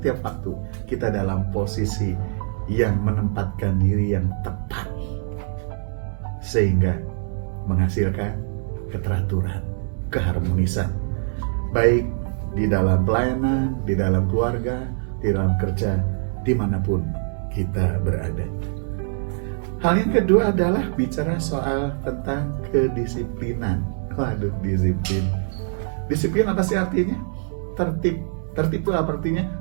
waktu, kita dalam posisi yang menempatkan diri yang tepat, sehingga menghasilkan keteraturan, keharmonisan, baik di dalam pelayanan, di dalam keluarga, di dalam kerja, dimanapun kita berada. Hal yang kedua adalah bicara soal tentang kedisiplinan. Waduh, disiplin. Disiplin apa sih artinya? Tertib. Tertib itu apa artinya?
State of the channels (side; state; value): left; silent; 63 dB below the other